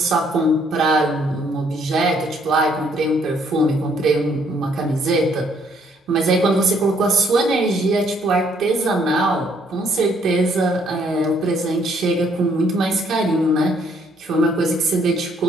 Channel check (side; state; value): both; normal; correlation 0.67